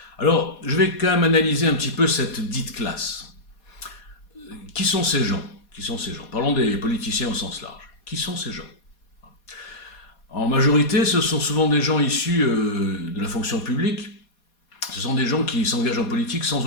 Alors, je vais quand même analyser un petit peu cette dite classe. Qui sont ces gens? Qui sont ces gens? Parlons des politiciens au sens large. Qui sont ces gens? En majorité, ce sont souvent des gens issus de la fonction publique. Ce sont des gens qui s'engagent en politique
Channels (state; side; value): late; right; 4.2 ms